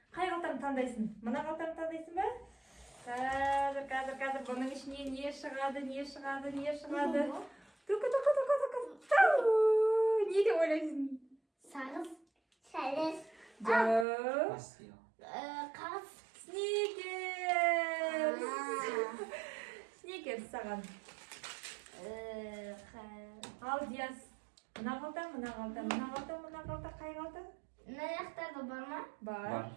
Қай қалтамды таңдайсың? Мына қалтамды таңдайсың ба? Қазір бұның ішіне не шығады? Не деп ойлайсың? Сағыз, сәлес, қағыз, Сникерс саған. Ал Диас, мына қалта, қай қалта? мына жақтарда бар ма? Бар.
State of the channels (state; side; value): drops out; left; at 14.1 s